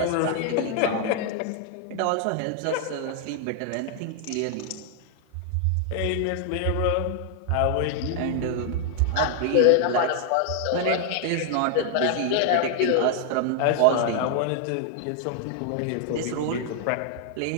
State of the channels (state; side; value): different; both; correlation 0.00